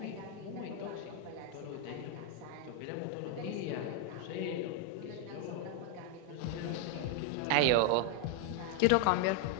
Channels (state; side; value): different; both; correlation 0.00